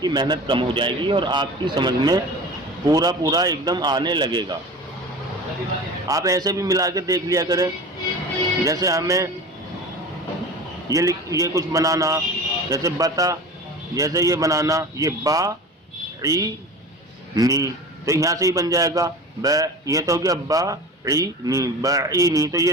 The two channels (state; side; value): normal; both; correlation 0.34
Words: محنت کم ہو جائے گی اور آپ کی سمجھ میں پورا ایک دم آنے لگے گا۔ آپ ایسے بھی ملا کے دیکھ لیا کریں، جیسے ہمیں یہ کچھ بنانا، جیسے بتا، جیسے یہ بنانا، یہ با عی نی، تو یہاں سے ہی بن جائے گا ب، یہ تو ہو گیا با عی نی، بعی نی، تو یہ